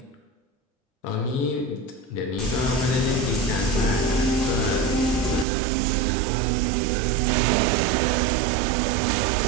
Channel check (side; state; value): left; drops out; at 5.5 s